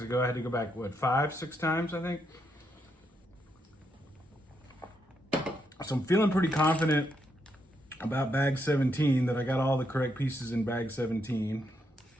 ago, I had to go back, what, 5, 6 times, I think? So I'm feeling pretty confident about bag 17, that I got all the correct pieces in bag 17.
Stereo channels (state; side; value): normal; both; correlation 0.79